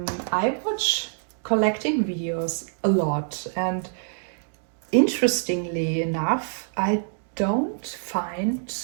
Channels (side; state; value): left; silent; digital silence